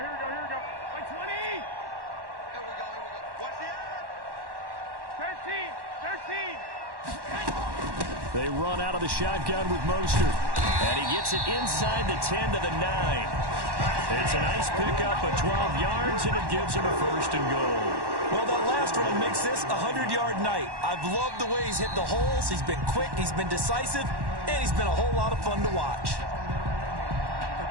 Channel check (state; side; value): late; left; 1.1 ms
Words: They run out of the shotgun with Mostert. And he gets it inside the 10 to the 9. It's a nice pickup of 12 yards, and it gives him a 1st and goal. Well, that last run makes this a 100-yard night. I've loved the way he's hit the holes. He's been quick, he's been decisive, and he's been a whole lot of fun to watch.